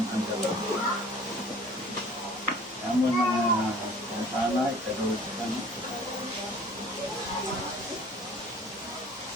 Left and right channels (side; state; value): both; normal; correlation 0.49